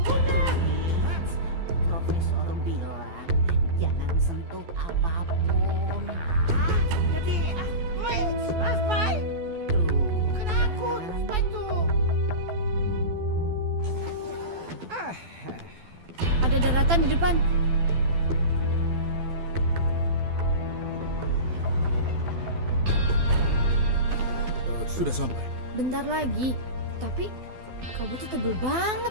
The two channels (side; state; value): left; late; 12 ms